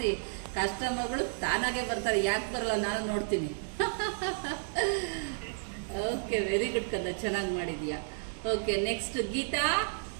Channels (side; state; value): left; silent; digital silence